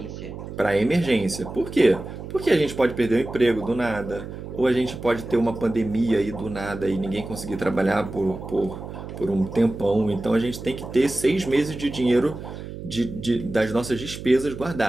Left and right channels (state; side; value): noise; right; hum, 10 dB below the sound